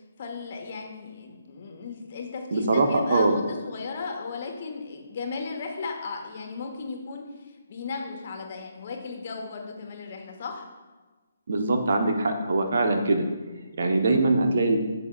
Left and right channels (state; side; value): inverted; both; correlation -0.79